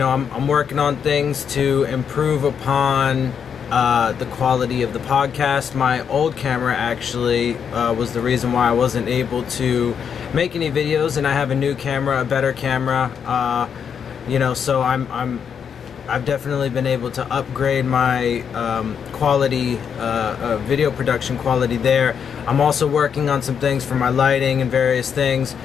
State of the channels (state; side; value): quieter; right; 7.4 dB